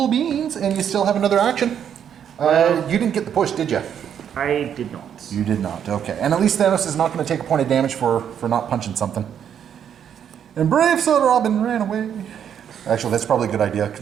beans, and you still have another action. You didn't get the push, did you? I did not. You did not, okay. And at least Thanos is not going to take a point of damage for not punching something. And Brave Soda Robin ran away. Actually, that's probably a good idea.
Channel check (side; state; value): left; quieter; 8.8 dB